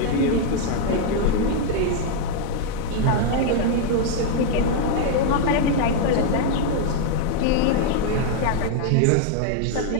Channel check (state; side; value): different; both; correlation 0.00